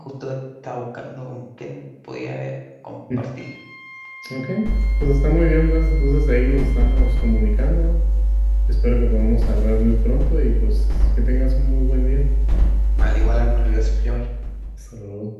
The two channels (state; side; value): identical; both; correlation 1.00